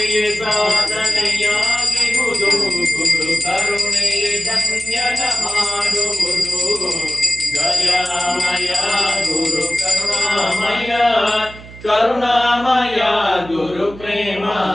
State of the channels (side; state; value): right; noise; hum, 17 dB below the sound